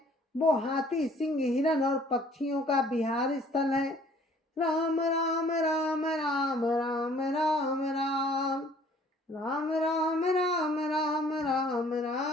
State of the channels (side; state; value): both; normal; correlation 0.56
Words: वो हाथी, सिंह, हिरण और पक्षियों का विहार स्थल है। राम राम राम राम राम राम राम राम राम राम राम राम